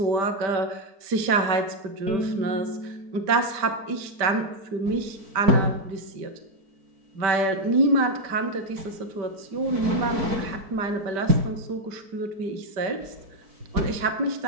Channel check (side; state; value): left; late; 5.1 ms